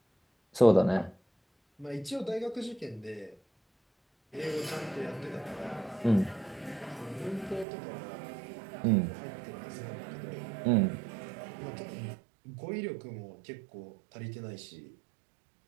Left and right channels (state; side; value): drops out; left; at 7.7 s